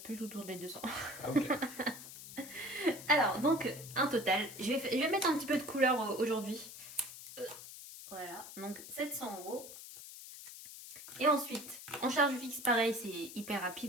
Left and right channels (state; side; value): noise; left; hiss, 13 dB below the sound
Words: plus autour des 200. Ah ok. Alors, donc, un total. Je vais mettre un petit peu de couleur aujourd'hui. Voilà, donc 700 euros. Et ensuite, en charge fixe, pareil, c'est hyper